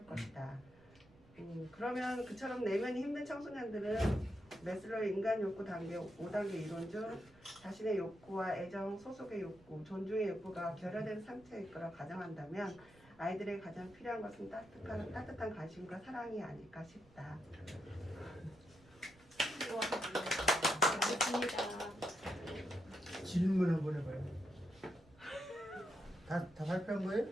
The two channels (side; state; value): right; noise; rumble, 26 dB below the sound